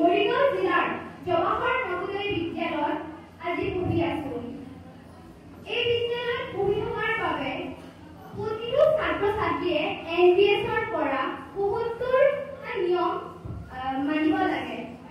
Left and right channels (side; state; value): both; identical; correlation 1.00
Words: জিলাৰ জৱাহৰ নৱোদয় বিদ্যালয়ত আজি পঢ়ি আছো। এই বিদ্যালয়ত পঢ়ি থকাৰ বাবে প্ৰতিটো ছাত্ৰ ছাত্ৰীয়ে NBSৰ পৰা ৭৫টা নিয়ম মানিব লাগে।